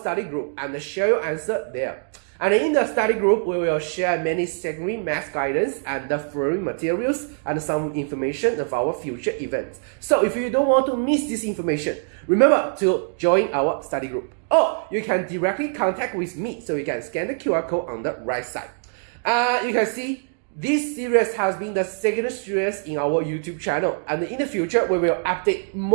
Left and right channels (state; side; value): silent; left; digital silence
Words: group, and share your answer there. And in the study group, we will share many secondary math guidance and the free materials and some information of our future events. So if you don't want to miss this information, remember to join our study group. Or you can directly contact with me, so you can scan the QR code on the right side. You can see this series has been the second series in our YouTube channel, and in the future we will update